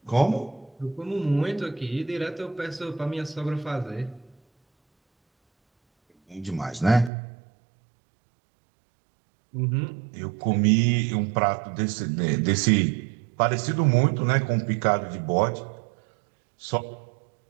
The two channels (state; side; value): drops out; left; at 7.1 s